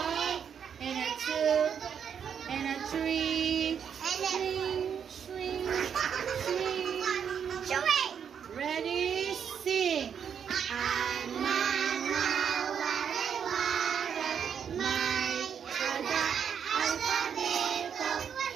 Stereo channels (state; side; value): quieter; left; 7.7 dB